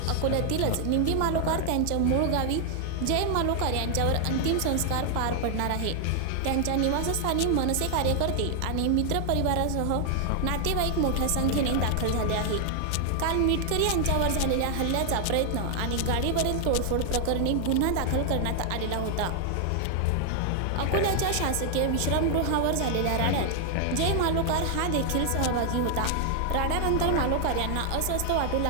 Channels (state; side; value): different; both; correlation 0.00